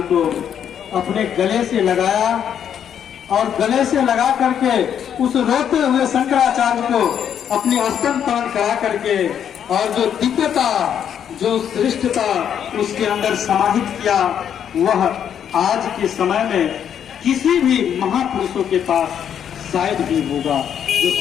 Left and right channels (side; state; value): right; quieter; 8.8 dB